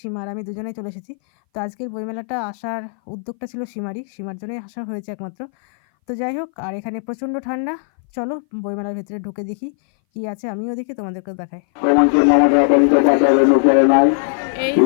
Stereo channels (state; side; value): silent; right; 60 dB below the other